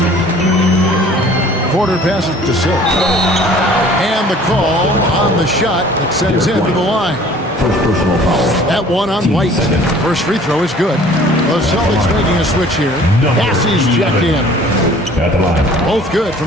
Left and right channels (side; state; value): both; normal; correlation 0.51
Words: Porter passes to Silk. And the call on the shot that sends him to the line. First personal foul. That one on White. First free throw is good. The Celtics making a switch here. Bassey's checked in. At the line. Both good